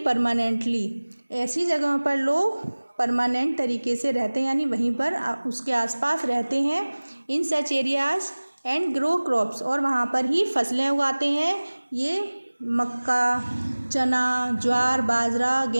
परमानेंटली, ऐसी जगहों पर लोग परमानेंट तरीके से रहते हैं, यानी वहीं पर उसके आसपास रहते हैं। In such areas and grow crops, और वहाँ पर ही फसलें उगाते हैं। ये मक्का, चना, ज्वार, बाजरा,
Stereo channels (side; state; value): both; inverted; correlation -1.00